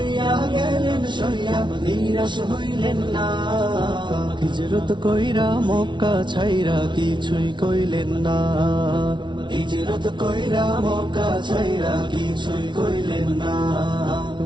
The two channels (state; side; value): late; left; 0.23 ms